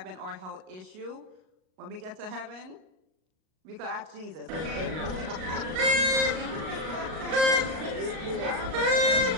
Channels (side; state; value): left; late; 38 ms